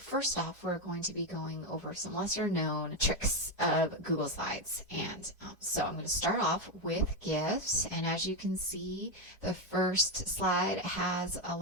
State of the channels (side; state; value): both; normal; correlation 0.08